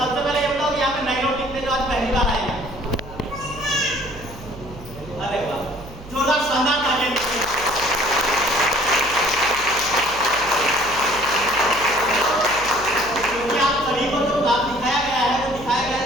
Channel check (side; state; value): right; noise; hum, 16 dB below the sound